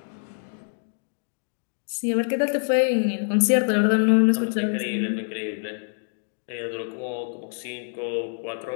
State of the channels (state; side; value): silent; right; digital silence